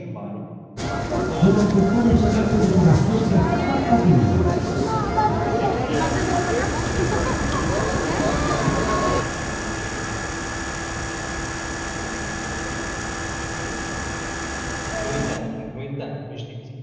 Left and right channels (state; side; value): identical; both; correlation 1.00